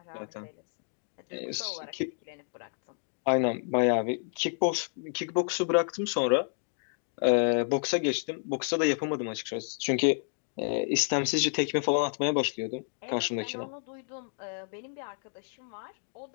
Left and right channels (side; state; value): right; silent; digital silence